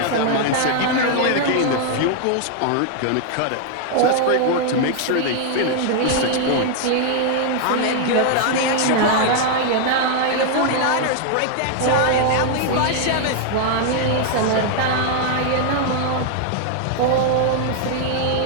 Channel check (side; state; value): both; different; correlation 0.00